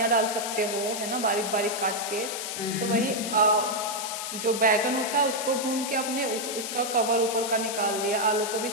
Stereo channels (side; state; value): left; noise; hiss, 5 dB below the sound